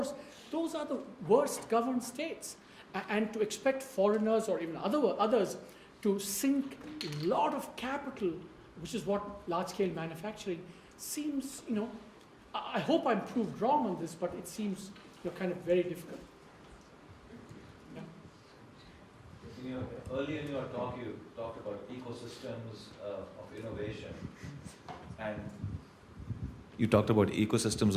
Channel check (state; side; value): identical; both; correlation 1.00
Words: those are the worst governed states. And to expect foreigners or even others to sink a lot of capital, which is what large-scale manufacturing seems, I hope I'm proved wrong on this, but it seems kind of very difficult. Yeah. Earlier in your talk, you talked about ecosystems of innovation, and you talked about ecosystems